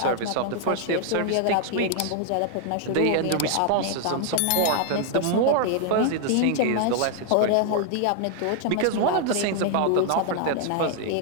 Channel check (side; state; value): both; different; correlation 0.00